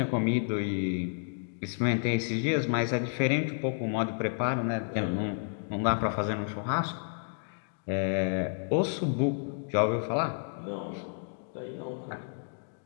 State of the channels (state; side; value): silent; right; digital silence